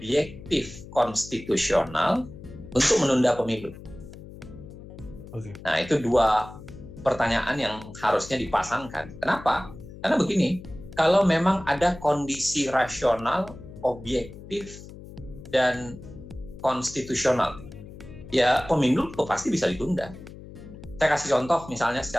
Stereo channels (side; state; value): left; noise; hum, 15 dB below the sound